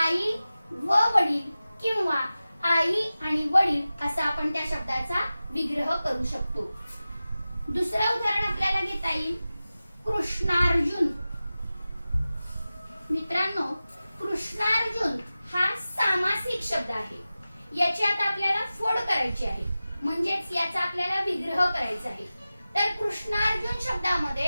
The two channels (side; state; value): both; inverted; correlation -0.95